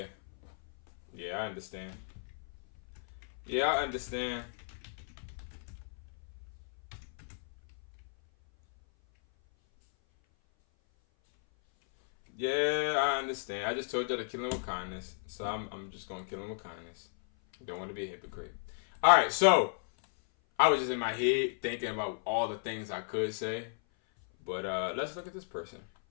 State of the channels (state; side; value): silent; right; 55 dB below the other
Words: Yeah, I understand. Yeah, I understand. Yeah, I understand. I just told y'all to kill him with kindness. So I'm just going to kill him with kindness. Don't want to be a hypocrite. All right, so I was just in my head thinking about all the things I could say. But let's look at this person.